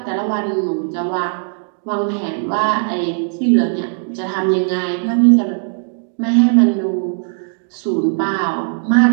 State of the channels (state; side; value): silent; left; 64 dB below the other